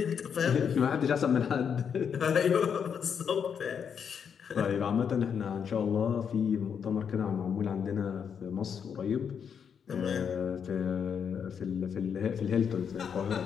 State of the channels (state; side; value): quieter; right; 7.3 dB